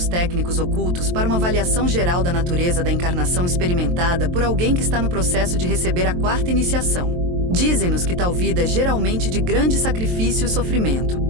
técnicos ocultos para uma avaliação geral da natureza da encarnação experimentada por alguém que está no processo de receber a 4ª iniciação. Dizem-nos que tal vida é geralmente de grande sacrifício e sofrimento,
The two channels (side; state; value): left; late; 23 ms